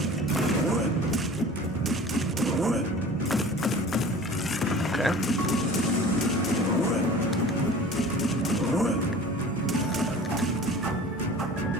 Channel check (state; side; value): normal; both; correlation 0.42